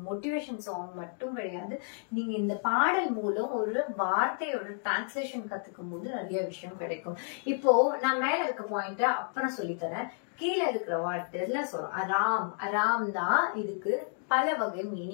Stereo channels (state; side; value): silent; right; 57 dB below the other